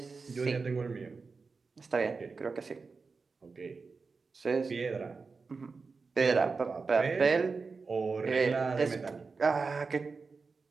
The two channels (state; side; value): quieter; left; 4.5 dB